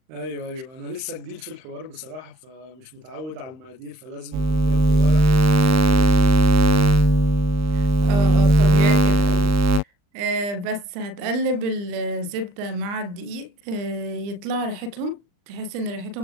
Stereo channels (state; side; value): late; left; 39 ms